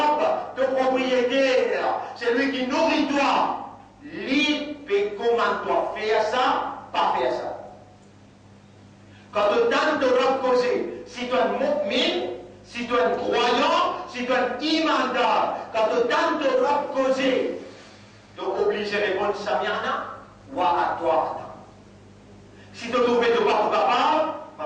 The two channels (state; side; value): identical; both; correlation 1.00